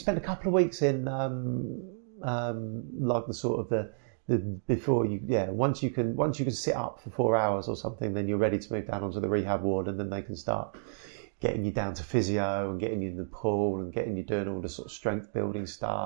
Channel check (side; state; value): left; silent; digital silence